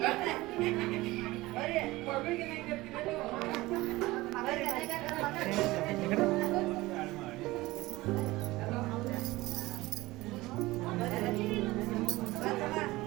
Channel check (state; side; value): quieter; left; 19.5 dB